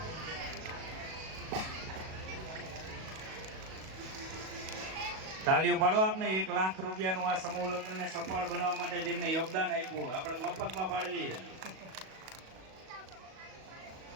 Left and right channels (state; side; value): late; left; 37 ms